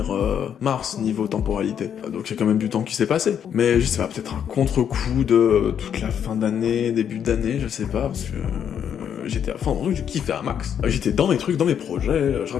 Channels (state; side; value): quieter; right; 8.6 dB